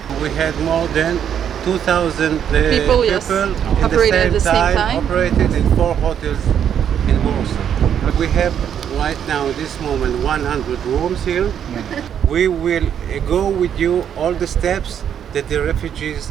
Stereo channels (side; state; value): left; quieter; 8.9 dB